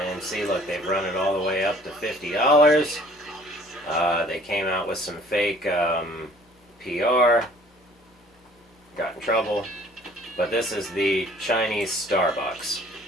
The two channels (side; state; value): both; normal; correlation 0.54